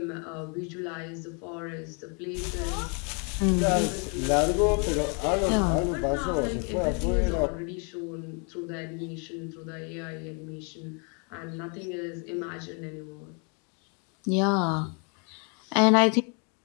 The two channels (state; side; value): quieter; right; 37.2 dB